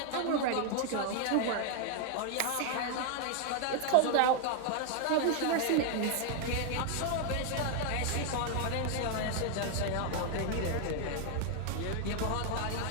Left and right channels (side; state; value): both; different; correlation 0.00